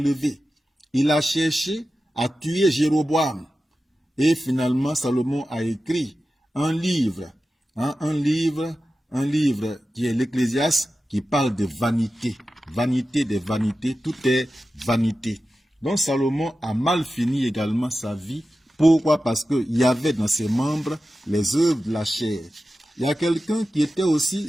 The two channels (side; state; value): both; normal; correlation 0.93